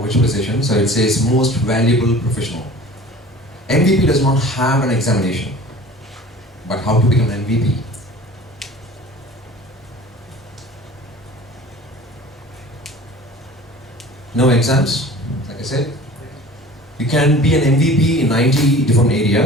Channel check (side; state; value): both; normal; correlation 0.43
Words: virtualization, so it says most valuable professional. MVP does not have an examination, but how to become an MVP? No exams, like I said. You can be an MVP in 90 different